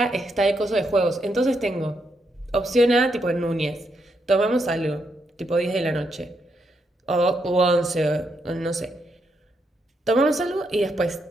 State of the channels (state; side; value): normal; both; correlation 0.79